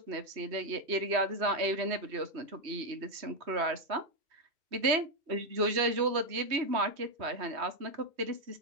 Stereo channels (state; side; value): late; left; 3.1 ms